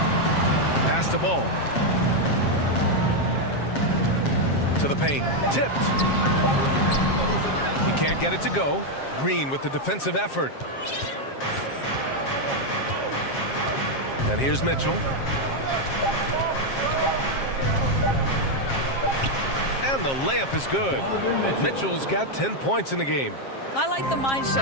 Pass the ball. To the paint. Tipped. He can't get it to go. Green with the defensive effort. And here's Mitchell. And the layup is good. Mitchell's got 10 points in the game. I like the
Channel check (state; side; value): late; right; 7.4 ms